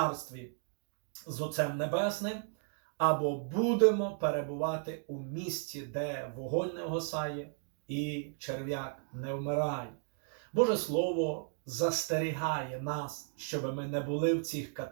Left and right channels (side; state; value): left; silent; 55 dB below the other